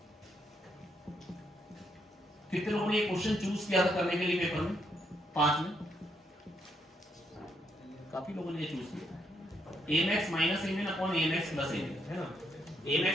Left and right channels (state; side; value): normal; both; correlation 0.76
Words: कितने लोगों ने ये क्वेश्चन चूज किया था करने के लिए पेपर में? 5 में काफी लोगों ने ये चूज किया। Amax minus Amin upon Amax plus Amin, है ना। Amax